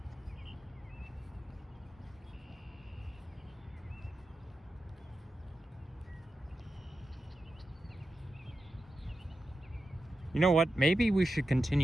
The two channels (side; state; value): both; normal; correlation 0.90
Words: You know what? Maybe we should